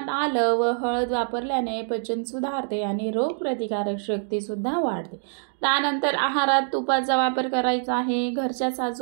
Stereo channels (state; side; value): silent; left; 62 dB below the other